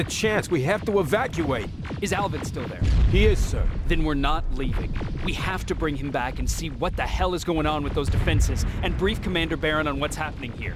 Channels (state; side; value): identical; both; correlation 1.00